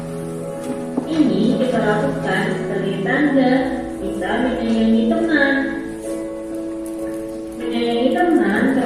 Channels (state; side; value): identical; both; correlation 1.00